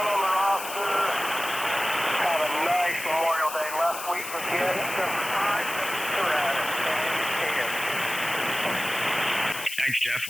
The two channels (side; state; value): left; noise; hiss, 9 dB below the sound